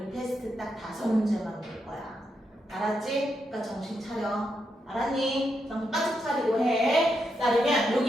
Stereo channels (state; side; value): normal; both; correlation 0.83